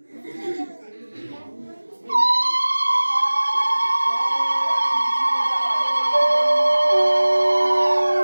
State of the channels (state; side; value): inverted; both; correlation -1.00